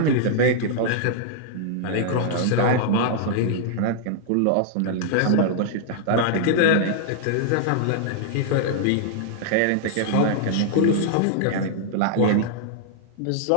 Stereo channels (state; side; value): different; both; correlation -0.01